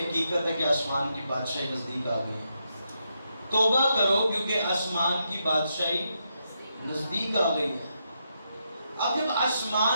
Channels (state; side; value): inverted; both; correlation -0.82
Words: ہے کہ آسمان کی بادشاہی نزدیک آ گئی؟ توبہ کرو کیونکہ آسمان کی بادشاہی نزدیک آ گئی ہے۔ اب جب